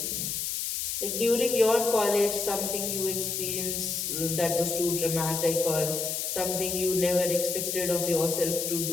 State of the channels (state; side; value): noise; left; hiss, 2 dB below the sound